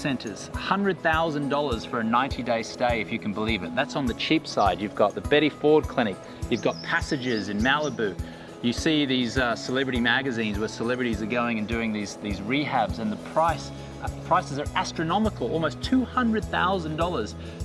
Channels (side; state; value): both; identical; correlation 1.00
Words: $100,000 for a 90-day stay, if you can believe it. That's on the cheap side. You've got the Betty Ford Clinic, you've got Passages in Malibu. You see these celebrity magazines where celebrities are going and doing these rehabs, and the prices are astronomical, almost $200,000